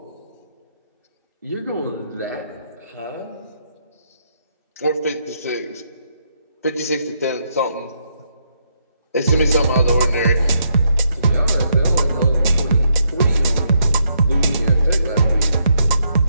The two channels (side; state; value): both; inverted; correlation -0.77